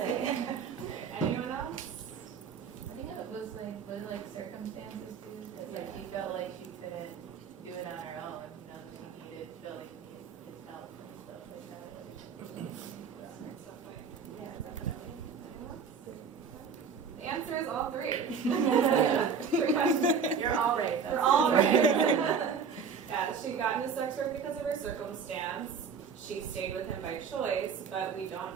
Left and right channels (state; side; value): quieter; left; 6.1 dB